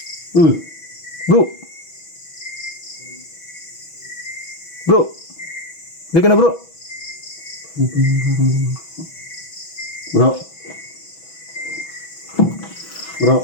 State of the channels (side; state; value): right; late; 6.1 ms